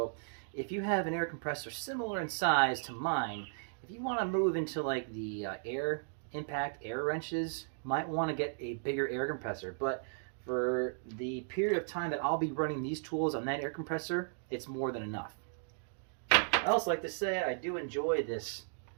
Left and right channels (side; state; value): left; silent; digital silence